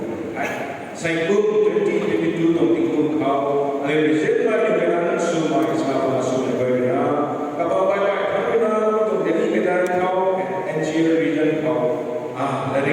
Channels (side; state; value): both; identical; correlation 1.00